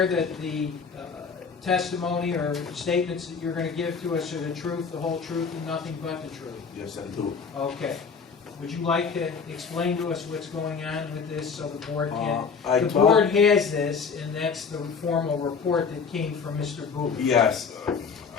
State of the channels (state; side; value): quieter; right; 5.7 dB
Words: that the testimony or statements that you're going to give to us are the truth, the whole truth, and nothing but the truth? Yes, I do. Okay. Would you like to explain to us what's going on with this so the board can? I The told- board has this, and that's the formal report that came from Mr. Booth. Yes,